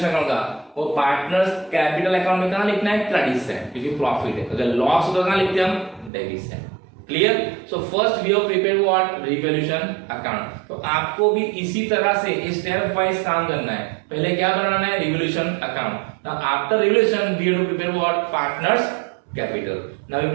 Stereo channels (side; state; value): left; drops out; at 6.1 s